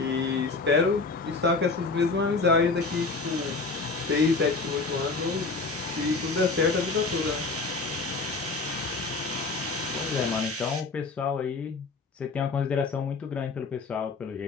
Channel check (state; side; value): quieter; right; 3.9 dB